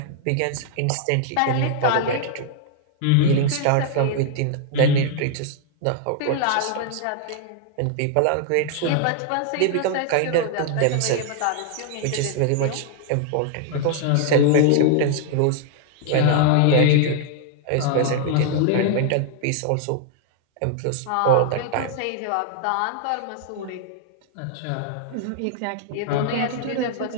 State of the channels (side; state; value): both; different; correlation 0.00